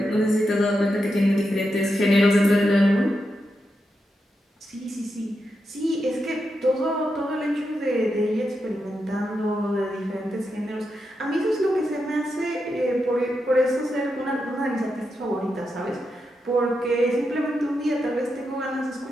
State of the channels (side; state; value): both; normal; correlation 0.86